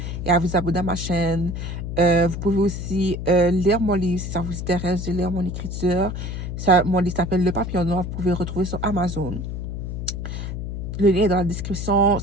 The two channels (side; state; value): left; noise; hum, 5 dB below the sound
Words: et à vous abonner à ma chaîne. Vous pouvez aussi lire mon livre si ça vous intéresse de lire mon écriture. Mon livre s'appelle Le Papillon Noir. Vous pouvez le retrouver sur Amazon. Le lien est dans la description